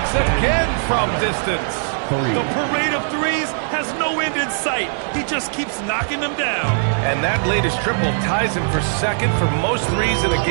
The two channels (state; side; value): silent; left; digital silence